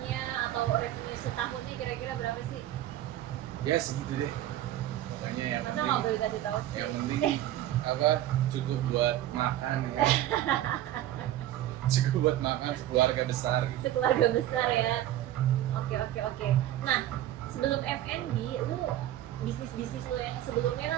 atau revenue setahunnya kira-kira berapa sih? Ya segitu deh. Pokoknya yang Masa nggak boleh penting, kasih tahu sih? yang penting cukup buat makan ya. Cukup buat makan sekeluarga besar gitu. Sekeluarga besar ya. Oke. Nah, sebelum F&B, lu bisnis lo yang sebelumnya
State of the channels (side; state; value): left; quieter; 13.2 dB